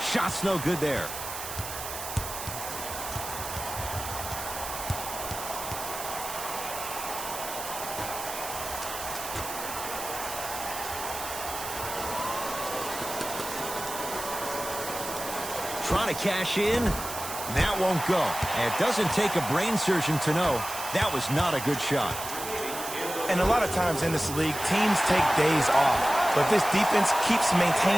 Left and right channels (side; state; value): right; noise; hiss, 8 dB below the sound